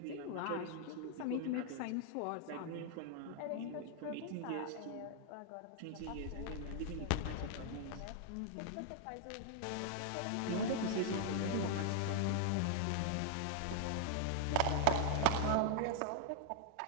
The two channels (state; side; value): different; both; correlation 0.00